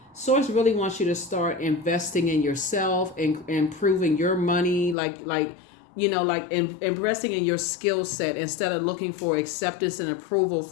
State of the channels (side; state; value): right; drops out; at 5.0 s